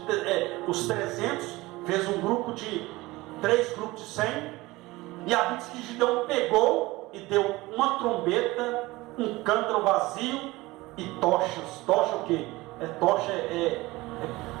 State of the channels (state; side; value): quieter; left; 20.3 dB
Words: os 300, fez um grupo de 3 grupos de 100, e a Bíblia diz que Gideão pegou e deu uma trombeta, um cântaro vazio e tochas. Tocha o quê? Tocha é